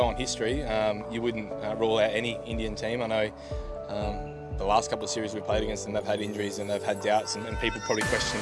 on history, you wouldn't rule out any Indian team. I know the last couple of series we played against them, they've had injuries and they've had doubts, and people probably questioned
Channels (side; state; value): both; identical; correlation 1.00